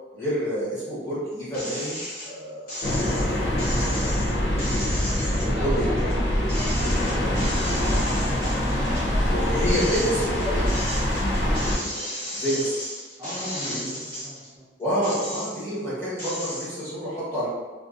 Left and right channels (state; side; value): normal; both; correlation 0.58